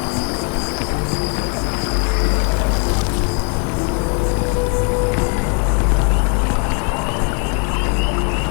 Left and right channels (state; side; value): quieter; right; 39.0 dB